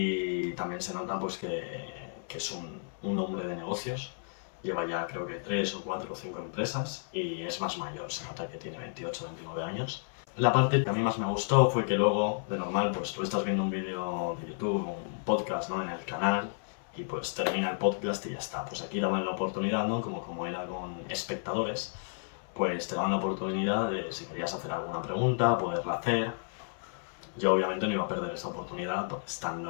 también se nota pues que es un hombre de negocios. Lleva ya creo que 3 o 4 o 5 empresas y es más mayor, se nota que tiene 28 o 29 años. La parte que a mí más me gustó fue que luego, de normal, pues tú estás viendo un vídeo de YouTube o un podcast, ¿no? En el canal y pues termina el podcast y ya está. Pues aquí daban la oportunidad, ¿no? Como era con espectadores, pues te daban la oportunidad de, si querías hacer alguna pregunta, poderla hacer. Yo obviamente no iba a perder esa oportunidad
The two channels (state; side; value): silent; right; 56 dB below the other